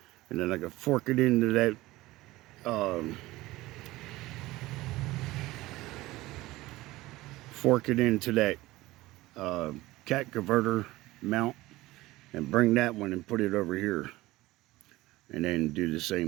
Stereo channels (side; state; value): left; quieter; 18.5 dB